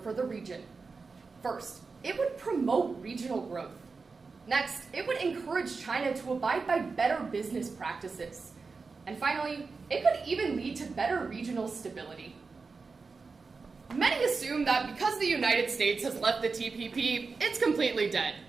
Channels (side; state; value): left; quieter; 4.5 dB